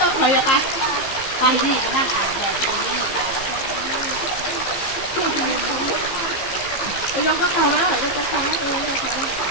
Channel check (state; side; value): late; right; 15 ms